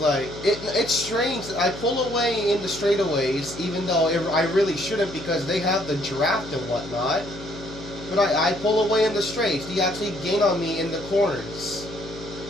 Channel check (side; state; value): left; noise; hum, 14 dB below the sound